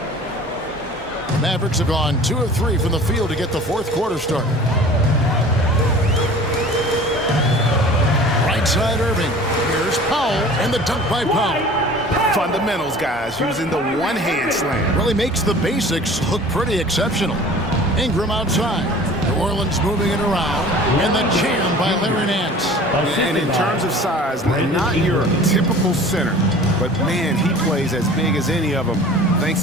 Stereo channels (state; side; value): normal; both; correlation 0.44